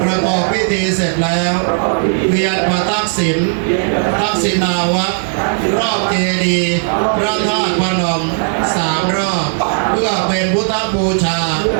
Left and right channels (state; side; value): silent; left; digital silence